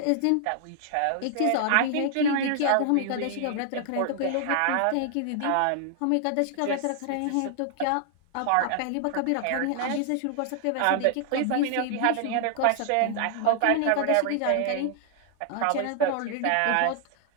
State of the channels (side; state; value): both; different; correlation 0.00